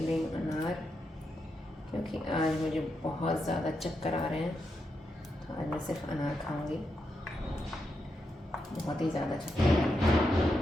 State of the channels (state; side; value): normal; both; correlation 0.84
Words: रही हूँ अनार, क्योंकि आज मुझे बहुत ज़्यादा चक्कर आ रहे हैं। तो आज मैं सिर्फ अनार खाऊंगी। बहुत ही ज़्यादा चक्कर आ रहे